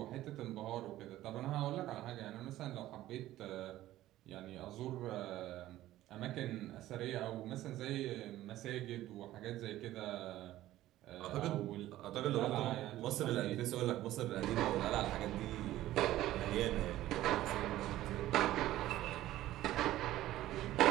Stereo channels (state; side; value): quieter; left; 14.8 dB